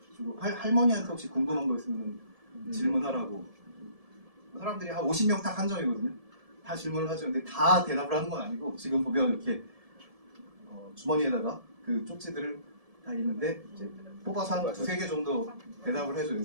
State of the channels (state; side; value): late; left; 1.7 ms